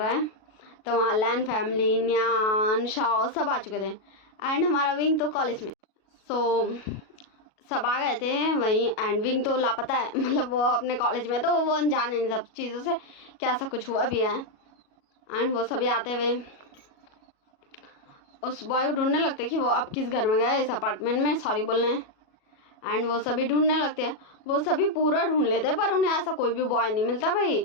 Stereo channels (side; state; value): right; late; 37 ms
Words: है। तो वहाँ लैन फैमिली, न्यान, शाओ सब आ चुके थे। एंड हमारा विंग तो कॉलेज में, सो सब आ गए थे वहीं। एंड विंग तो लापता है, मतलब वो अपने कॉलेज में, तो वो अनजान है इन सब चीज़ों से कि ऐसा कुछ हुआ भी है। एंड वो सभी आते हुए उस बॉय को ढूंढने लगते कि वो अब किस घर में गए, इस अपार्टमेंट में सॉरी बोलने। एंड वो सभी ढूंढने लगते हैं, वो सभी पूरा ढूंढ लेते हैं पर उन्हें ऐसा कोई भी बॉय नहीं मिलता भाई,